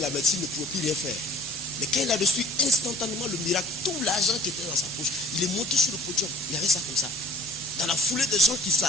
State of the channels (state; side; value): normal; both; correlation 0.51